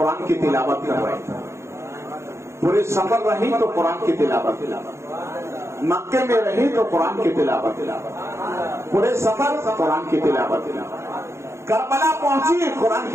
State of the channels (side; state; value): left; late; 0.13 ms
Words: کی تلاوت کر رہی تھی، پورے سفر رہی تو قرآن کی تلاوت، مکے میں رہی تو قرآن کی تلاوت، پورے سفر قرآن کی تلاوت، کربلا پہنچی قرآن